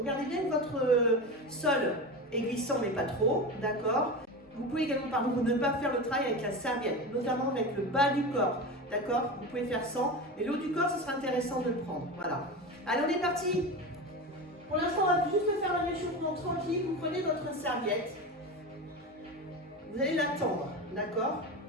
bien que votre sol est glissant, mais pas trop, d'accord. Vous pouvez également, par contre, ne pas faire le travail avec la serviette, notamment avec le bas du corps, d'accord. Vous pouvez faire sans, mais le haut du corps, ce sera intéressant de le prendre, voilà. Allez, on est parti. Pour l'instant, on va juste faire un réchauffement tranquille. Vous prenez votre serviette, vous allez la tendre, d'accord.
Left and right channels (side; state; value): both; normal; correlation 0.25